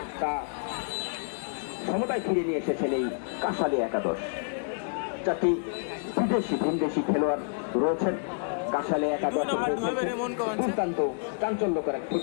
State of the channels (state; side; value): silent; right; digital silence